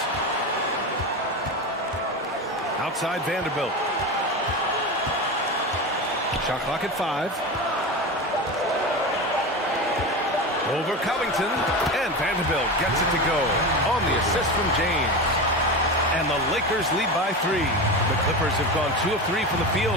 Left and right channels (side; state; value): both; normal; correlation 0.23